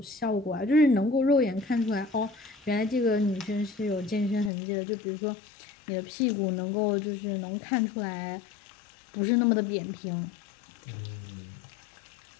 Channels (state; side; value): drops out; right; at 4.5 s